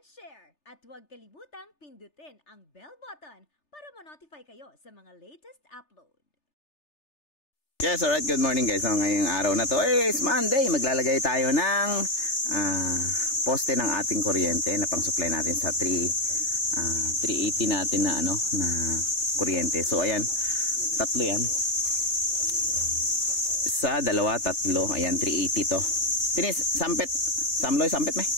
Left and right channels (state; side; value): late; right; 3.3 ms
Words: share. At huwag kalimutang pindutin ang bell button para ma-notify kayo sa mga latest upload. Yes, alright. Good morning guys. So, ngayong araw na to is Monday. Maglalagay tayo ng poste ng ating kuryente na pang-supply natin sa 380 natin na na kuryente. So ayan, tatlo yan. Isa, dalawa, tatlo. Ayan, 380 to. Tinis, sampet. Samloy, sampet may?